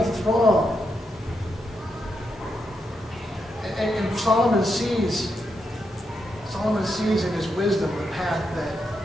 throng. And Solomon sees in his wisdom the path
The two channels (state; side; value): normal; both; correlation 0.83